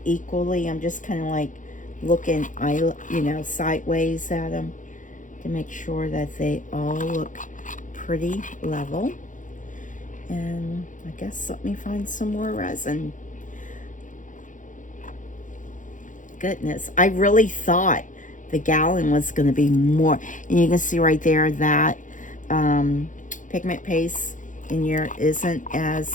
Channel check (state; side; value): late; right; 0.37 ms